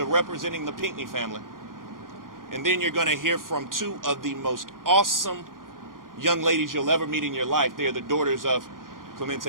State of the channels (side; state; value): left; late; 0.90 ms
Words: representing the Pinckney family. And then you're going to hear from 2 of the most awesome young ladies you'll ever meet in your life. They are the daughters of